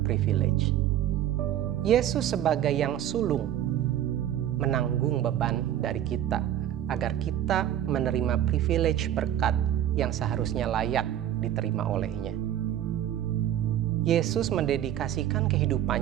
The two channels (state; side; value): quieter; left; 11.4 dB